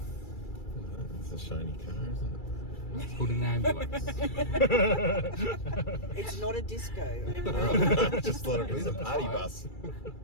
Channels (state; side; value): late; right; 2.3 ms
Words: It's a shiny car, isn't it? It's called an ambulance. It's not a disco. I just thought it was a party bus.